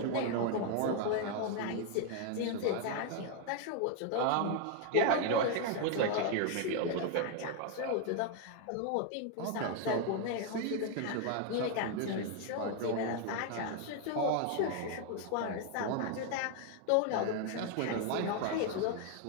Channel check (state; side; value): different; both; correlation 0.01